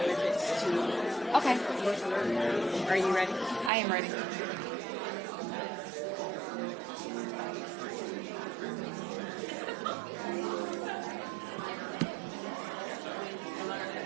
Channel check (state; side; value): drops out; left; at 3.7 s